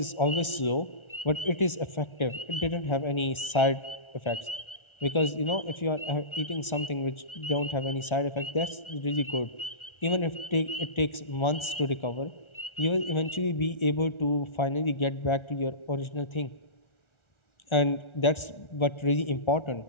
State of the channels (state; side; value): late; right; 1.4 ms